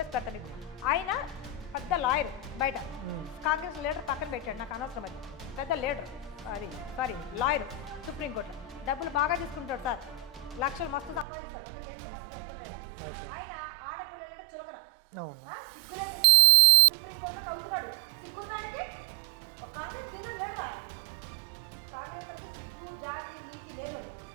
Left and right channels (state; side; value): drops out; left; at 11.2 s